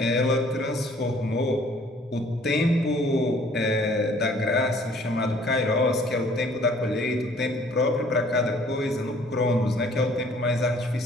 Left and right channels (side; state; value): both; normal; correlation 0.57